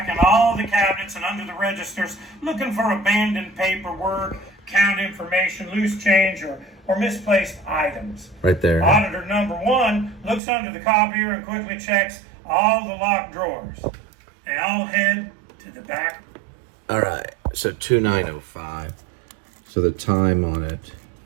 all the cabinets and under the registers, looking for abandoned paperwork, count information, loose change, or misplaced items. Right there. Auditor number 1 looks under the copier and quickly checks all the locked drawers. They all head to the back. All right. So 2905. So the time on it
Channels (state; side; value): drops out; left; at 10.4 s